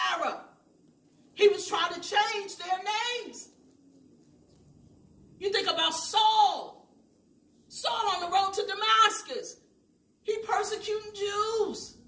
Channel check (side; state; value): both; identical; correlation 1.00